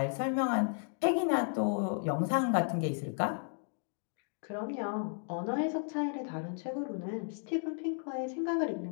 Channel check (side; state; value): right; silent; 55 dB below the other